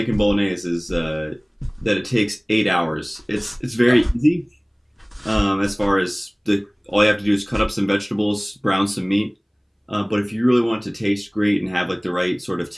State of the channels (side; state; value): both; identical; correlation 1.00